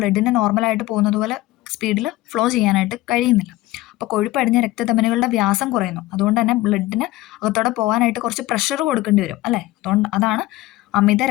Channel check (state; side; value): quieter; right; 17.4 dB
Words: നോർമലായിട്ട് പോകുന്നത് പോലെ സ്പീഡിൽ ഫ്ലോ ചെയ്യാനായിട്ട് കഴിയുന്നില്ല. അപ്പോൾ കൊഴുപ്പടിഞ്ഞ രക്തധമനികളുടെ വ്യാസം കുറയുന്നു. അതുകൊണ്ട് തന്നെ ബ്ലഡിന് അകത്തോടെ പോകാനായിട്ട് കുറച്ച് പ്രഷർ കൊടുക്കേണ്ടി വരും അല്ലേ. അതാണ് അമിത